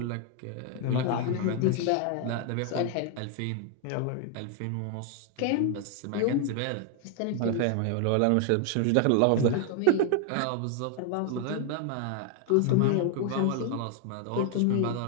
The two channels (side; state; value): both; different; correlation 0.00